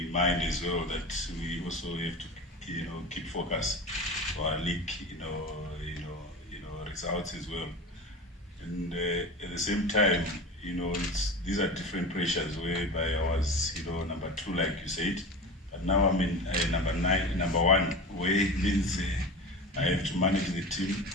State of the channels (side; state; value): both; normal; correlation 0.31